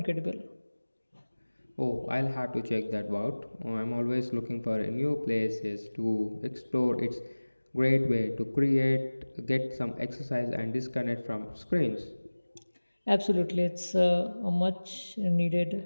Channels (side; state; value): both; inverted; correlation -1.00